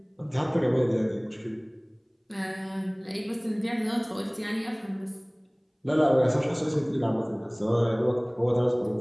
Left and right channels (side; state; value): both; identical; correlation 1.00